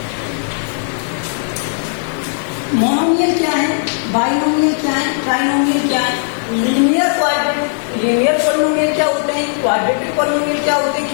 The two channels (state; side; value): silent; right; digital silence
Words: Monomial क्या है? बाइनोमियल क्या है? ट्राइनोमियल क्या है? लीनियर पॉलिनोमियल क्या होते हैं? क्वाड्रेटिक पॉलिनोमियल क्या होते हैं?